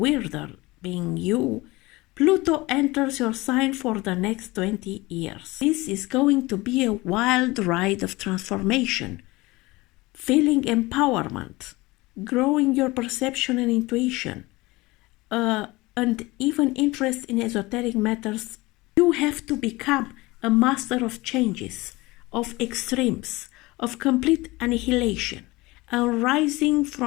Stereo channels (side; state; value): right; quieter; 21.6 dB